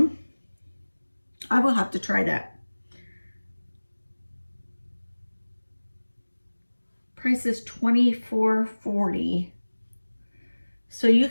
I will have to try that. Price is $24.40. So you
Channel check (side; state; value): both; inverted; correlation -1.00